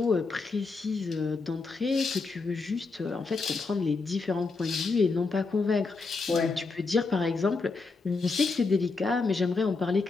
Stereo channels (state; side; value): quieter; right; 4.1 dB